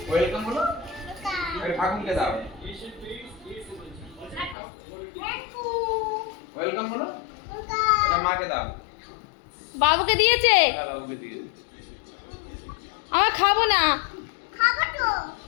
ওয়েলকাম বলো এটা ঠাকুরকে দাও ওয়েলকাম বলো এটা মাকে দাও বাবুকে দিয়েছে বাবুকে দিয়েছে আমার খাবো না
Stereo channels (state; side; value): drops out; right; at 4.5 s